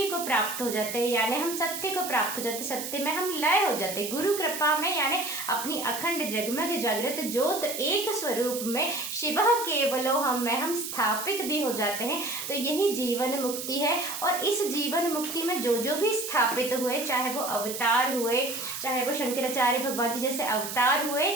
को प्राप्त हो जाते हैं, यानी हम सत्य को प्राप्त हो जाते हैं, सत्य में हम लय हो जाते हैं। गुरु कृपा में यानी अपनी अखंड जगमग जागृत ज्योत एक स्वरूप में शिव केवलो हम में हम स्थापित भी हो जाते हैं। तो यही जीवन मुक्ति है, और इस जीवन मुक्ति में जो जो भी स्थापित हुए, चाहे वो अवतार हुए, चाहे वो शंकराचार्य भगवान जी जैसे अवतार हुए,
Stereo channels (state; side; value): noise; right; hiss, 7 dB below the sound